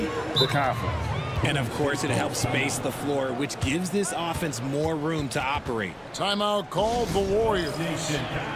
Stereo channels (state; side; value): identical; both; correlation 1.00